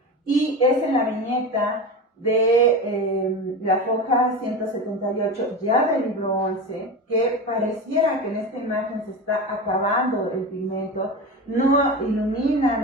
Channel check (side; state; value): both; normal; correlation 0.25